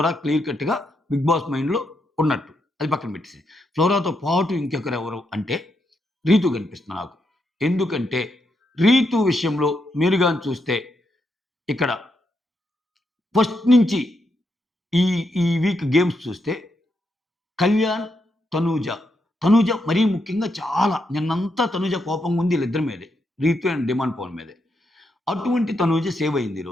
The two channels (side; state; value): both; normal; correlation 0.81